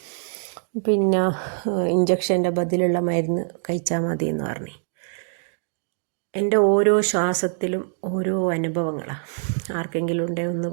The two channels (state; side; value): silent; left; digital silence